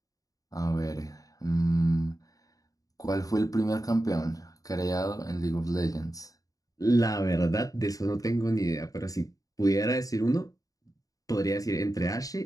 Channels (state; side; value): late; right; 0.17 ms